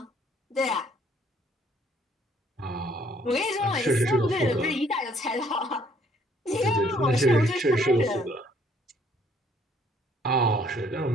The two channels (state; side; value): normal; both; correlation 0.63